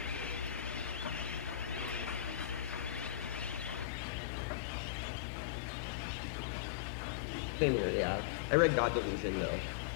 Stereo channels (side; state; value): right; drops out; at 3.9 s